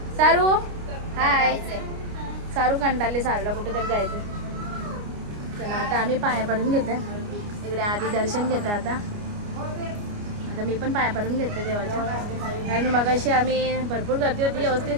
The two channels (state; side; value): late; left; 29 ms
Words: सारू हाय. सारू कंटाळले. सारूला कुठेतरी जायचं. चला आता आम्ही पाया पडून घेते. इकडे आधी दर्शन घेते. आता मी पण पाया पडून घेते देवाच्या. कारण मगाशी आम्ही भरपूर गर्दी होती. व्यवस्थित